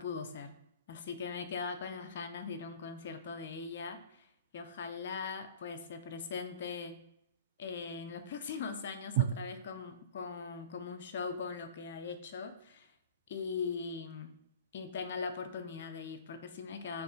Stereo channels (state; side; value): inverted; both; correlation -0.39